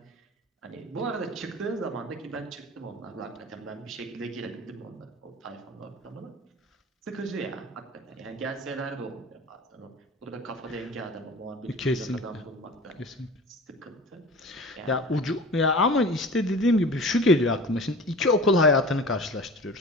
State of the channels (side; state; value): both; normal; correlation 0.39